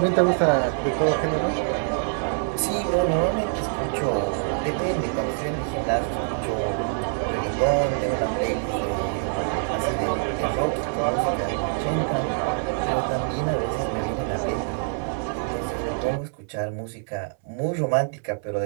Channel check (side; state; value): left; silent; 62 dB below the other